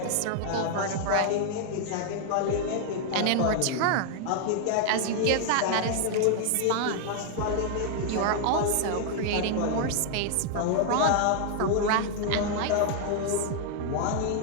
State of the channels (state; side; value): different; both; correlation 0.00